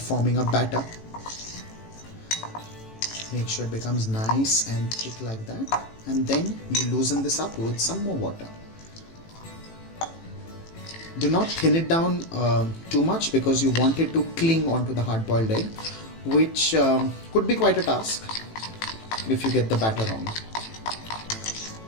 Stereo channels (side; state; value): right; late; 18 ms